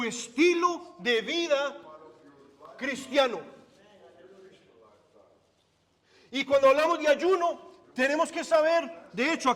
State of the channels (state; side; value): identical; both; correlation 1.00